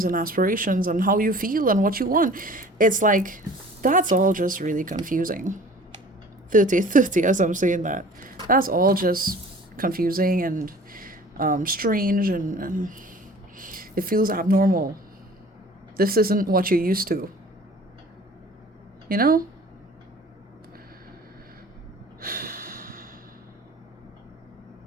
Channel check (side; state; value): both; normal; correlation 0.47